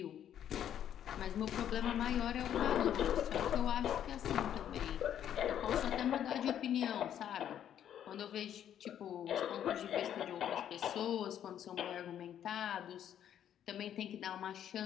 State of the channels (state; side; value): quieter; right; 10.1 dB